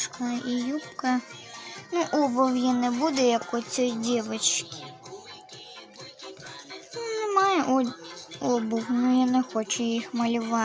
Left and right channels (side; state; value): both; identical; correlation 1.00